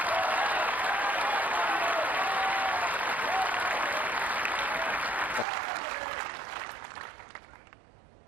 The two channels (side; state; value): left; drops out; at 5.5 s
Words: That's good match play. Good match play.